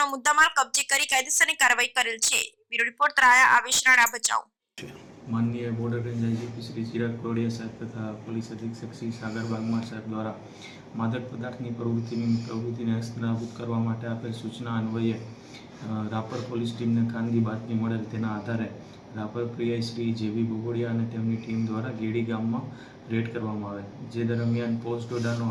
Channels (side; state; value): both; identical; correlation 1.00